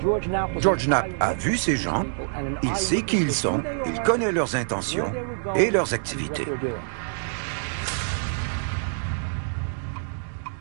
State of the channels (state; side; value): silent; left; digital silence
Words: George Knapp a vu ces gens, il sait qui ils sont, il connaît leurs intentions et leurs activités.